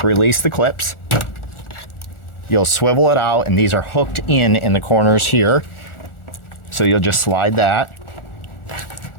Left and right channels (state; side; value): late; right; 1.4 ms